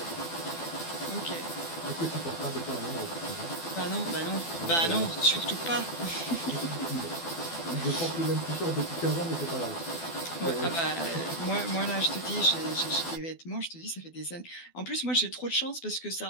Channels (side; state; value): right; late; 12 ms